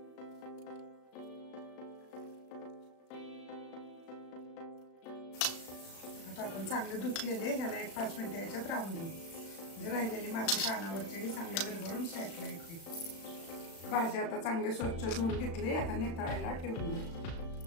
आपण चांगले धुतलेले ह्याला 1-5 मिनिटं याच्यात राहून देऊ, म्हणजे राहिलेली माती पानावरची चांगली विरघळून साईडला येते. भाजी आता चांगली स्वच्छ धुवून घेतली. आता नितळायला ठेवून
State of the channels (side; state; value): right; late; 36 ms